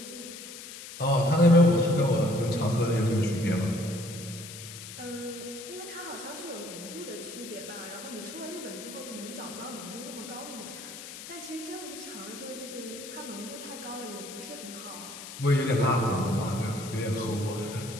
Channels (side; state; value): left; noise; hiss, 12 dB below the sound